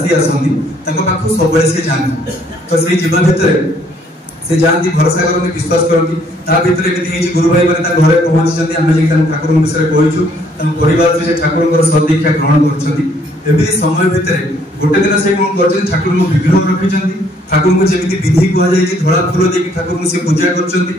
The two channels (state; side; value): normal; both; correlation 0.65